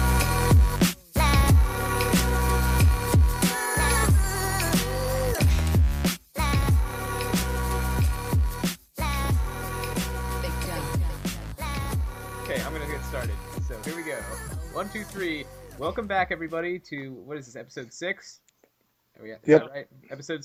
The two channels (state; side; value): identical; both; correlation 1.00